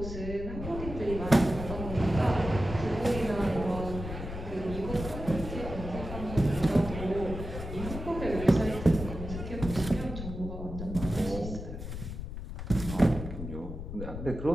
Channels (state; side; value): noise; left; rumble, 8 dB below the sound